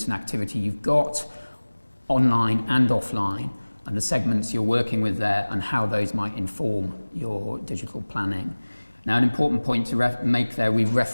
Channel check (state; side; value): inverted; both; correlation -1.00